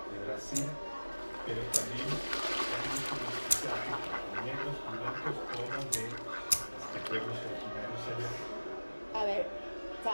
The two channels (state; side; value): inverted; both; correlation -1.00